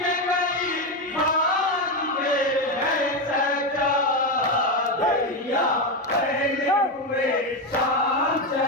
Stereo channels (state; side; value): normal; both; correlation 0.11